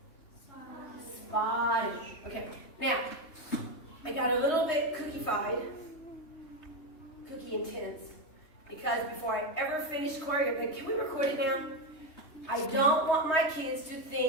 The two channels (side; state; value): right; late; 3.2 ms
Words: Spotting. Okay, now, I got a little bit cookie-fied, cookie intense, because before I ever finished choreography, can we record it now? I don't want my kids to